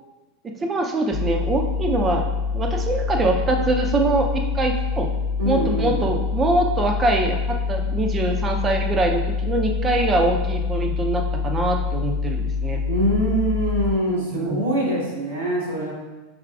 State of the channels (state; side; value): normal; both; correlation 0.37